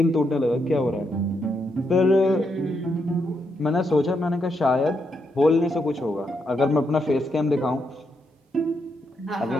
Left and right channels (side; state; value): both; normal; correlation 0.80